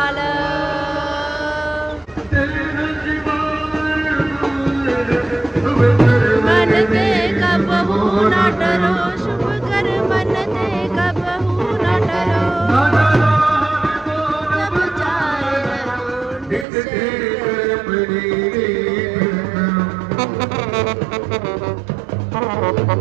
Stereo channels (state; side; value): drops out; left; at 16.7 s